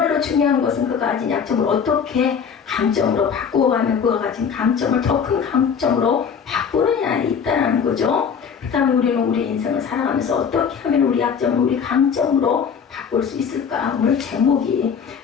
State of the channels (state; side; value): quieter; right; 6.8 dB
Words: 중요한 것은 그가 가진 약점을 어떻게 강점으로 바꾸어가면 그가 가진 강점을 더 큰 강점으로 바꾸느냐에 있다는 거죠. 그렇다면 우리는 우리 인생을 살아가면서 어떻게 하면 우리 약점을 우리 강점으로 바꿀 수 있을까? 오늘 제목이